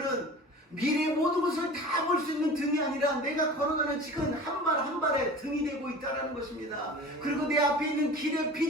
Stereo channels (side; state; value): both; normal; correlation 0.38